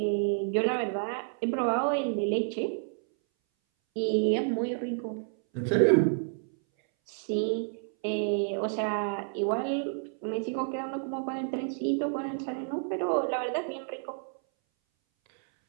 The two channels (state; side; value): silent; left; 58 dB below the other